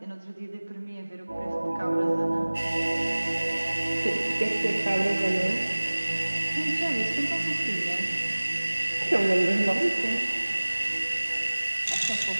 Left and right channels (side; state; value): both; inverted; correlation -1.00